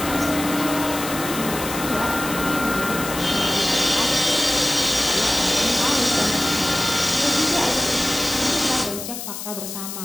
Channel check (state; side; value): noise; left; hiss, 8 dB below the sound